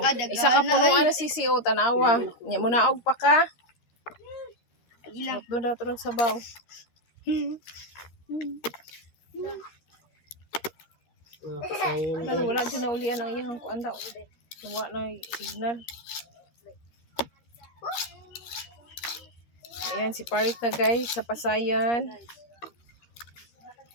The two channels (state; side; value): late; right; 13 ms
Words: isa ka punuan na sisi o tanawa. Nya mo naog pa ka. Doon daw tulog sa baw. Mga pasayan. Pero wala dyan na ulian ang iyang kuan daw. Nawa na signal. Ayan, si Parit na guys sa pasayan.